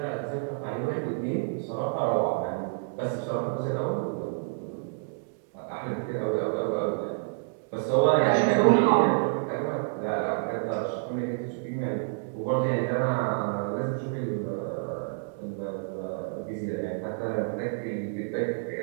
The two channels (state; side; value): silent; left; digital silence